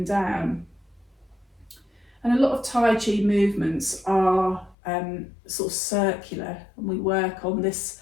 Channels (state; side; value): drops out; right; at 4.8 s